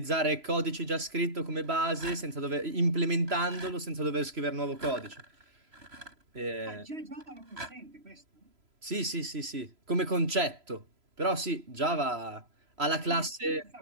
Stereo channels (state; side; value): late; left; 3.0 ms